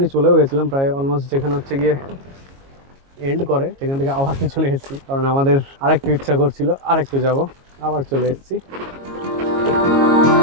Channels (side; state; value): left; late; 22 ms